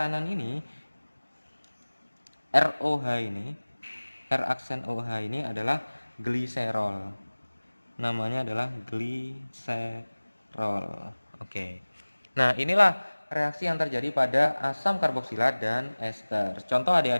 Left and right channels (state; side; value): inverted; both; correlation -1.00